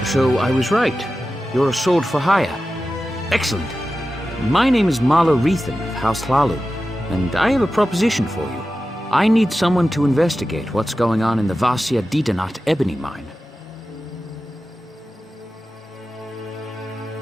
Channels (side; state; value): both; normal; correlation 0.93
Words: So I was right. You're a sword for hire. Excellent. My name is Marla Reethan of House Hlalu, and I have a proposition for you. I need someone to investigate what's going on in the Vasia Didanat ebony mine.